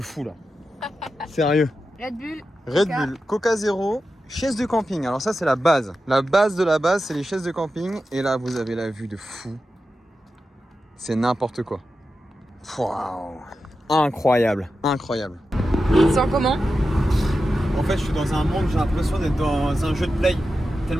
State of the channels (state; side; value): normal; both; correlation 0.91